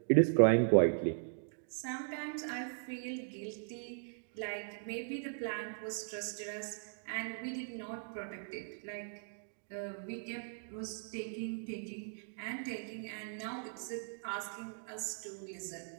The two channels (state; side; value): silent; left; digital silence